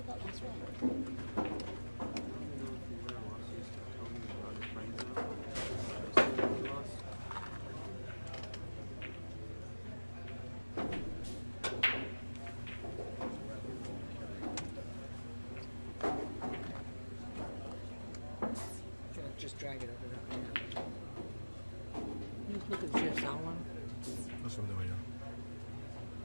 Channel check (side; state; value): both; inverted; correlation -1.00